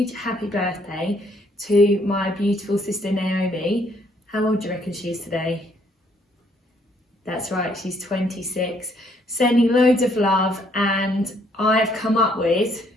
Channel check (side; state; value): both; normal; correlation 0.67